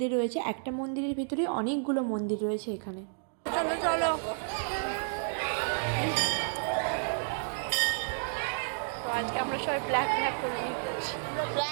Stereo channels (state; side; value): silent; left; digital silence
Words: রয়েছে। একটা মন্দিরের ভিতরে অনেকগুলো মন্দির রয়েছে এখানে। চলো চলো, তো আজকে আমরা সবাই ব্ল্যাক করে নিচ্ছি,